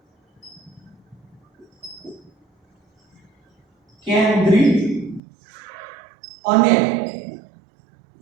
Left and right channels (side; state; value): left; drops out; at 5.2 s